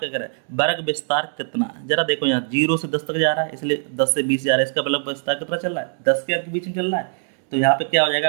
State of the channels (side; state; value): left; silent; 64 dB below the other